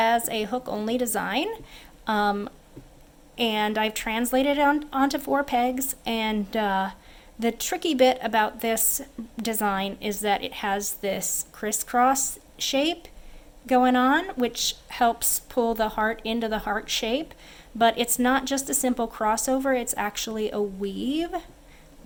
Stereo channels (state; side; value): identical; both; correlation 1.00